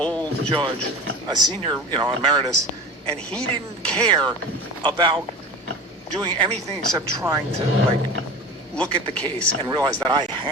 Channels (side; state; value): both; normal; correlation 0.34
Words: judge, a senior, emeritus, and he didn't care about doing anything except trying to, look at the case and realize that I